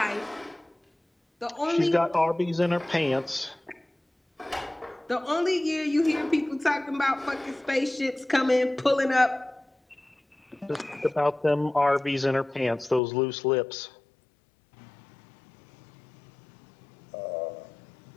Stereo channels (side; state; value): right; drops out; at 13.0 s